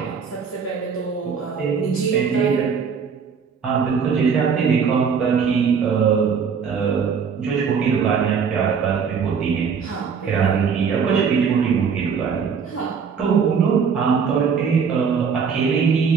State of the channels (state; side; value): quieter; left; 6.3 dB